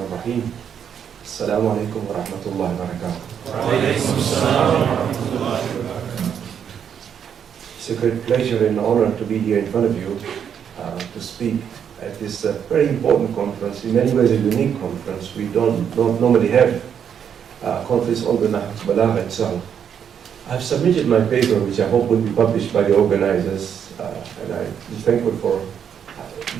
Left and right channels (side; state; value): left; quieter; 8.2 dB